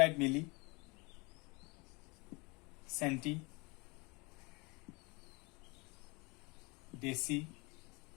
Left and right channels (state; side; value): quieter; right; 27.6 dB